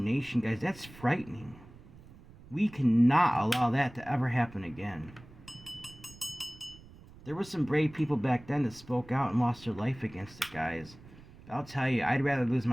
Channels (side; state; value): right; noise; rumble, 21 dB below the sound